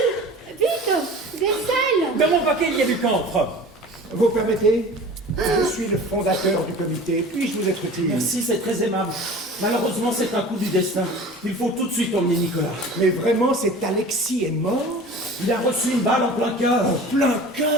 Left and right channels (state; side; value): normal; both; correlation 0.40